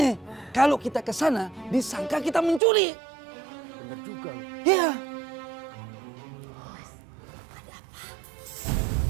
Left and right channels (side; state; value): left; drops out; at 2.6 s